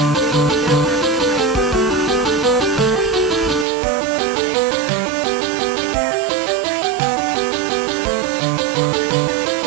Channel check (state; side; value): drops out; left; at 3.7 s